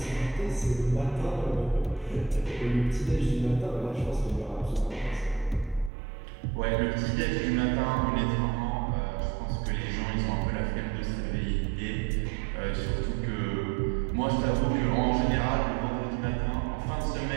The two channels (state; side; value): drops out; left; at 5.9 s